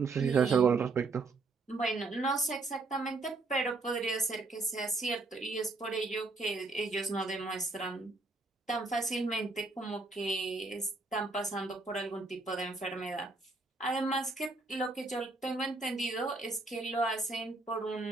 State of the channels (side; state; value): left; quieter; 3.5 dB